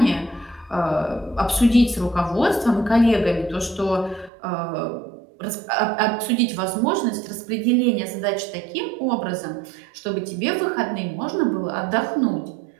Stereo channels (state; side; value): drops out; left; at 4.3 s